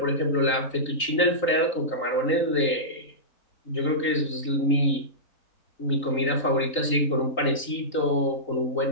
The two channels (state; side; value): late; right; 3.9 ms